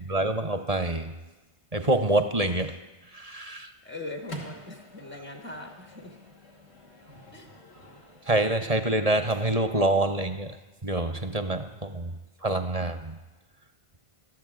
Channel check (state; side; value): late; left; 1.7 ms